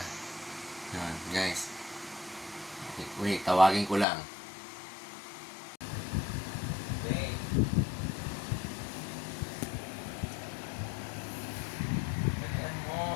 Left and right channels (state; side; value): drops out; right; at 4.0 s